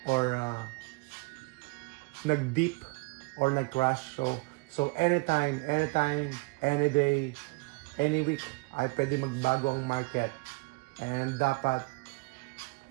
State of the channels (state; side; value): quieter; left; 28.0 dB